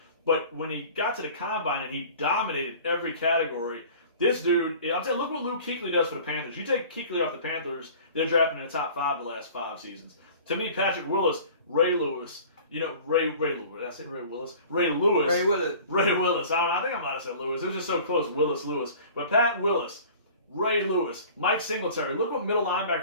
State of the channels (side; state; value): both; inverted; correlation -0.44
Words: But when he got to the combine and he dominated every category, this dude, I'm saying, look what Luke Kuechly does for the Panthers. You take Kuechly off the Panthers, they're drafting in the top 5 the last 5 seasons. To me, Patrick Willis, Ray Lewis, Ray Lewis. I said Ray Willis. Ray Lewis. Ray Willis. Ray Willis. I think I might have said Lewis. It was just so close. Willis, Lewis. But Pat Willis, Ray Lewis, Mike Singletary. Look what middle